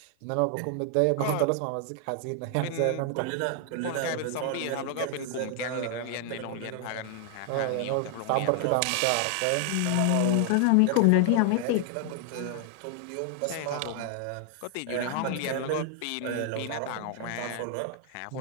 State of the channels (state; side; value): different; both; correlation 0.00